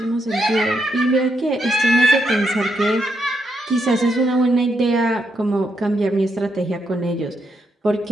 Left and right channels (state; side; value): normal; both; correlation 0.79